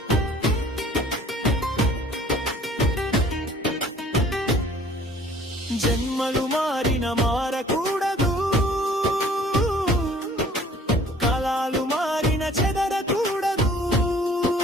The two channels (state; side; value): normal; both; correlation 0.53